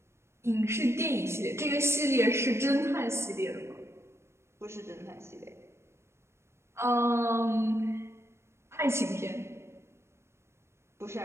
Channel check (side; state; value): left; late; 0.13 ms